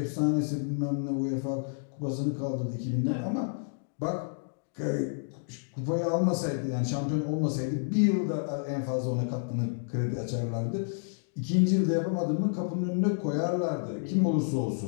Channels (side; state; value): right; silent; digital silence